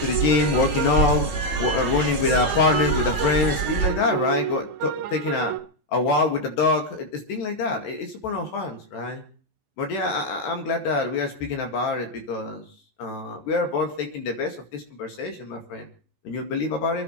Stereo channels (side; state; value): right; late; 2.7 ms